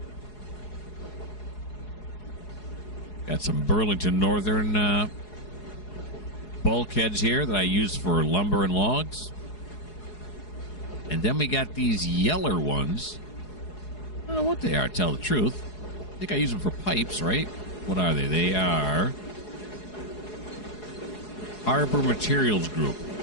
Got some Burlington Northern bulkheads here that I use for lumber and logs. And then we got these yeller ones. I don't know what they are, to tell the truth. I think I use them for pipes, right? What are they? They are Harbor Materials Group.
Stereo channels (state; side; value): late; right; 4.8 ms